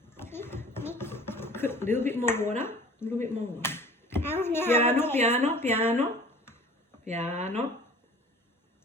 Put a little bit more water. A little bit more water. Piano, piano, piano. Piano.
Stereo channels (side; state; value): both; normal; correlation 0.46